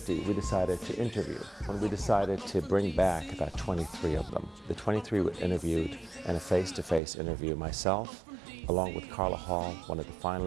we decided to interview. When we decided to bring back about 23 of them. The 23 were interviewed in a face-to-face interview. Myself, along with Carla Hall, one of the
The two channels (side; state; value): left; drops out; at 7.0 s